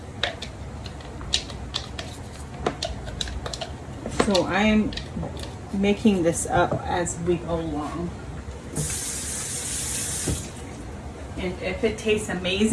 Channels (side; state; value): both; identical; correlation 1.00